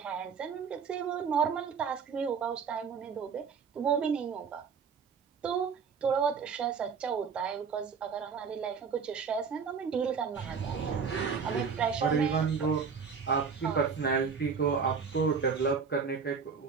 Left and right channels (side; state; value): left; quieter; 5.9 dB